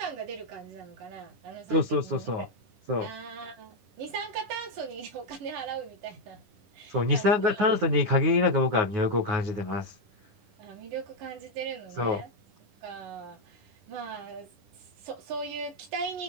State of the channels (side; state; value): left; late; 10 ms